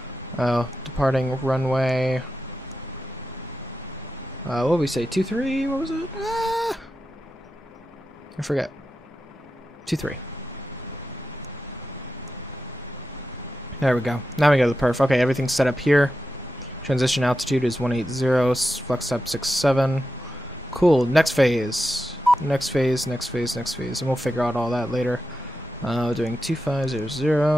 Oh, departing runway. What did we say? 23? What was it? I forget. 23. There we go. Now we go to the perf. Okay, everything's set up here. Transition altitude is 180. Flex up 67. Cool. Next phase. Next phase. Next phase. Next phase. And we'll figure out all that later. Doing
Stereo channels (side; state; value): both; normal; correlation 0.90